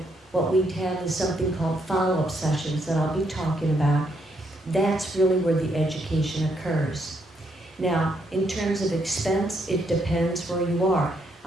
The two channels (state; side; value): normal; both; correlation 0.75